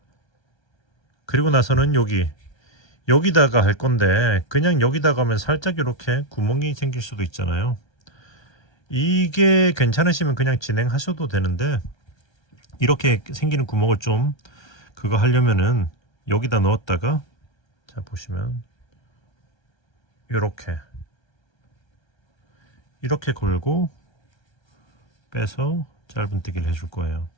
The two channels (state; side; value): late; right; 1.3 ms